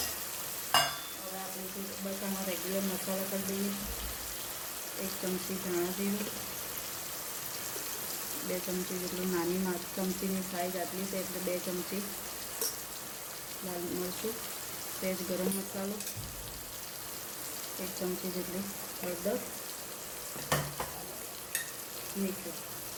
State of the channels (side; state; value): both; identical; correlation 1.00